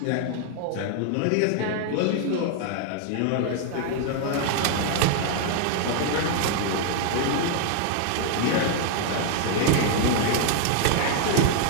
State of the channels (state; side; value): different; both; correlation 0.00